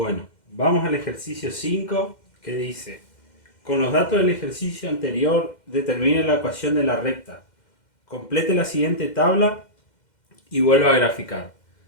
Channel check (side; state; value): right; late; 2.1 ms